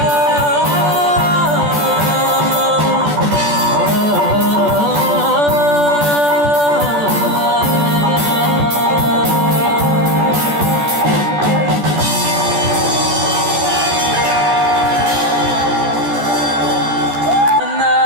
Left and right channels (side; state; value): left; late; 14 ms